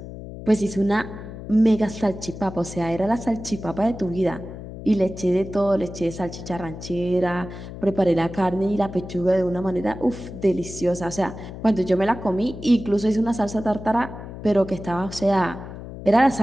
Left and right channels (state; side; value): noise; left; hum, 12 dB below the sound